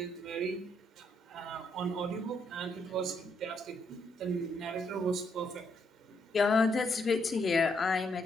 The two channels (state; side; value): normal; both; correlation 0.75